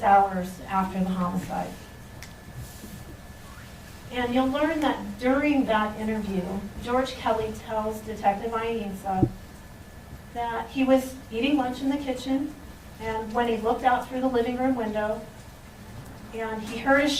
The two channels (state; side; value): identical; both; correlation 1.00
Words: hours after the homicide. And you'll learn that during that interview, George Kelly tells Detective Ainsa that he was eating lunch in the kitchen, and when he looked out through the living room window, and he heard a